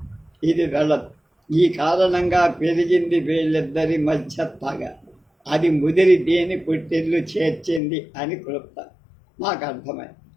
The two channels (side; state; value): right; drops out; at 7.8 s